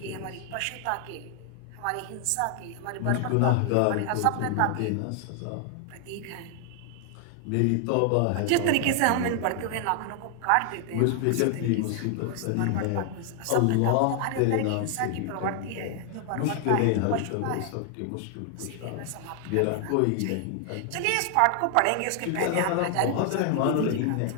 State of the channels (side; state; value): both; different; correlation 0.00